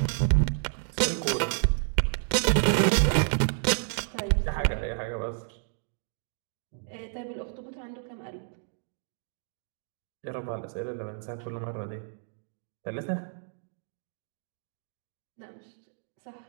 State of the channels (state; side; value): silent; left; digital silence